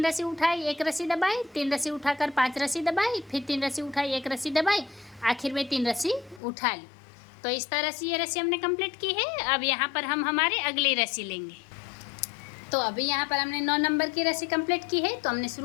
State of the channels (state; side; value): drops out; right; at 6.4 s